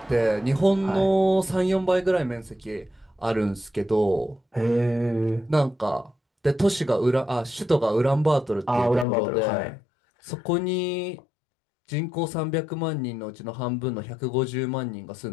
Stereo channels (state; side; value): drops out; right; at 9.1 s